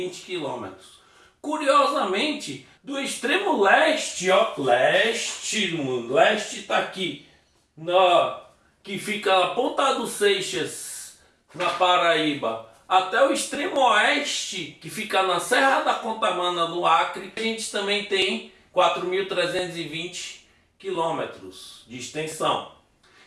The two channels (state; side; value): identical; both; correlation 1.00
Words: quilômetros. Curiosamente, do extremo leste, ó, leste está aqui, que fica na Ponta dos Seixas, na Paraíba, até o extremo oeste, que fica na Serra da Contamana, no Acre, a gente também tem 4.320 quilômetros de extensão.